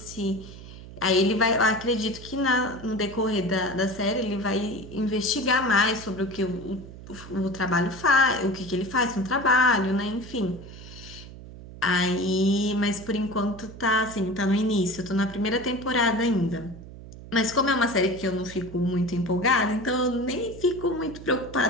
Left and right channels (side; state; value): right; noise; hum, 15 dB below the sound